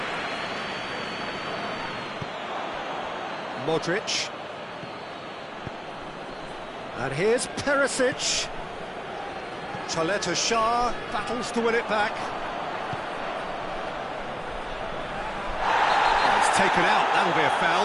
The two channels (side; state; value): both; identical; correlation 1.00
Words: Modric. And here's Perisic. Chaleta Shah battles to win it back. Oh, it's taken out, that'll be a